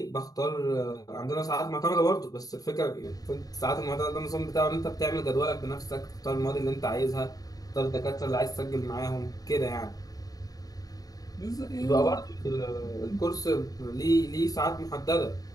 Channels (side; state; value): right; late; 0.18 ms